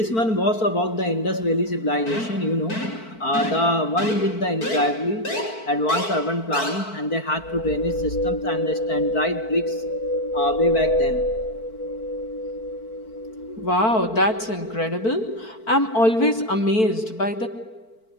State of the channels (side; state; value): right; late; 4.5 ms